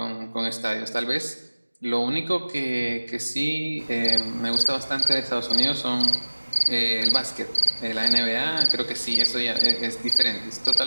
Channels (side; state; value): both; inverted; correlation -1.00